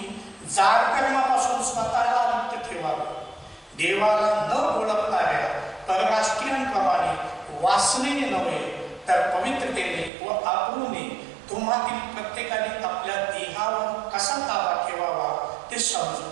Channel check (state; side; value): drops out; left; at 10.1 s